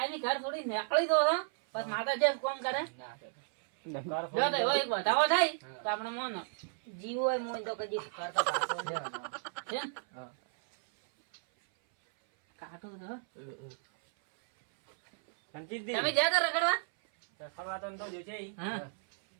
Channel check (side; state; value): left; silent; 55 dB below the other